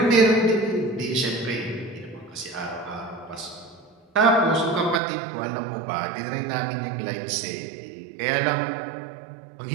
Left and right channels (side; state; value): left; drops out; at 5.0 s